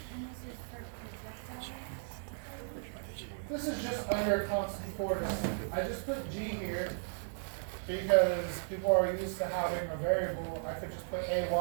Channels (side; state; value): left; silent; digital silence